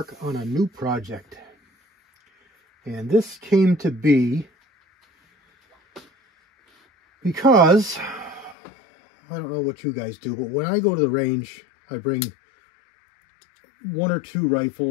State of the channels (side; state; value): right; drops out; at 8.6 s